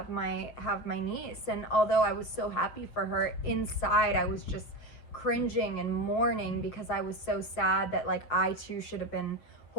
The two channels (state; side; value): late; right; 7.1 ms